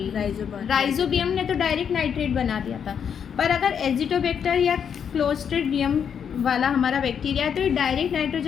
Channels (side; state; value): right; quieter; 7.6 dB